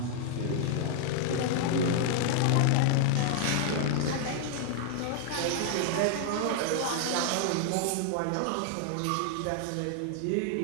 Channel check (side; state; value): both; different; correlation 0.00